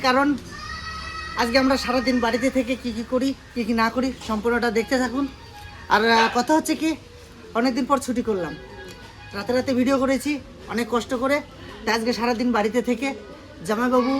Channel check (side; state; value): both; identical; correlation 1.00